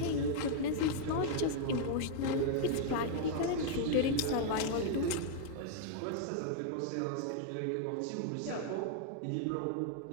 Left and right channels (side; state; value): both; different; correlation 0.00